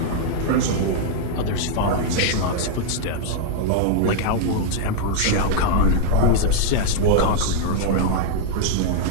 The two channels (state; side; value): different; both; correlation -0.01